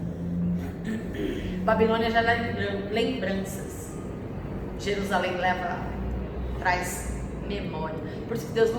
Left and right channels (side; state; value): both; identical; correlation 1.00